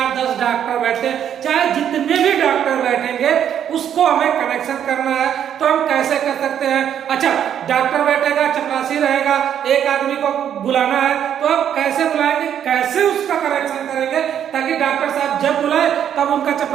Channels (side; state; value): left; quieter; 9.4 dB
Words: 10 डॉक्टर बैठते हैं, चाहे जितने भी डॉक्टर बैठेंगे उसको हमें कनेक्शन करना है तो हम कैसे कर सकते हैं। अच्छा, डॉक्टर बैठेगा, चपरासी रहेगा, एक आदमी को बुलाना है तो अब कैसे बुलाएंगे, कैसे उसका कनेक्शन करेंगे ताकि डॉक्टर साहब जब बुलाए तब उनका